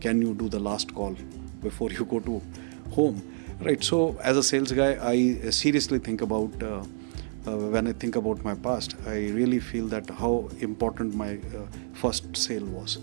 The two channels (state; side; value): silent; left; digital silence